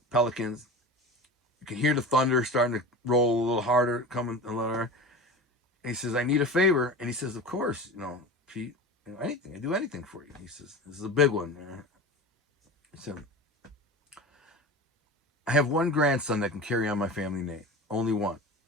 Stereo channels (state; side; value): normal; both; correlation 0.32